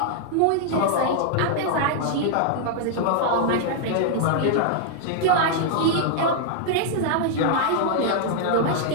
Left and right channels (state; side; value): different; both; correlation 0.00